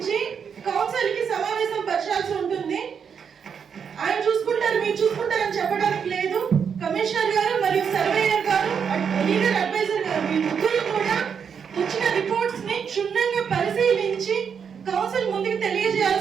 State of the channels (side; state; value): left; quieter; 7.0 dB